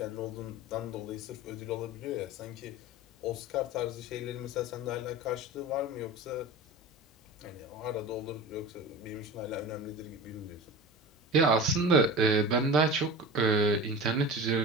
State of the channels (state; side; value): normal; both; correlation 0.32